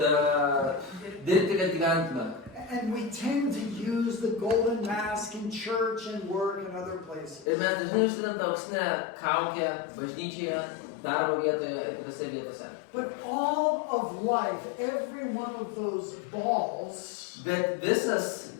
dirbti, kad gyventume. And we tend to use the golden mask in church and work and other places. Ir mes dažnai užsidedam tą auksinę kaukę bažnyčioje, darbo vietoje ir kitose vietose. But all of life, every one of those balls, Bet visas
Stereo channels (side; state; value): right; drops out; at 7.5 s